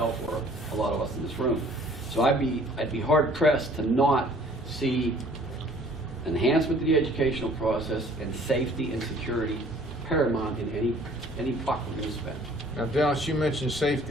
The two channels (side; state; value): left; noise; rumble, 21 dB below the sound